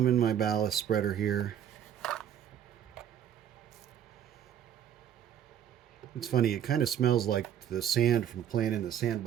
in my ballast spreader here. It's funny, it kind of smells like the sand from playing in the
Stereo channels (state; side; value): quieter; left; 9.7 dB